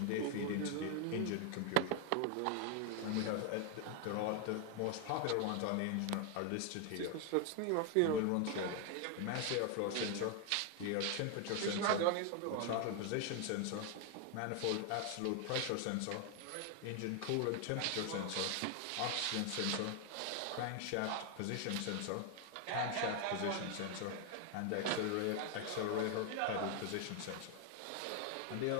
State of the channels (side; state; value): both; different; correlation 0.01